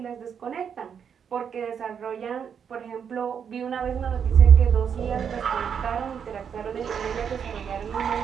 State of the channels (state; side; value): quieter; left; 7.5 dB